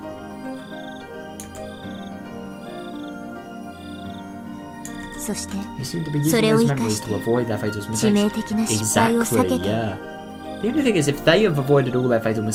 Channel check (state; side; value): identical; both; correlation 1.00